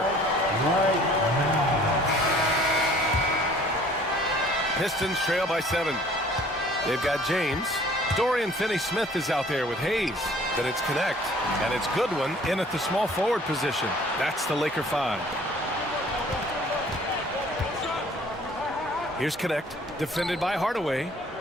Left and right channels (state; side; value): normal; both; correlation 0.53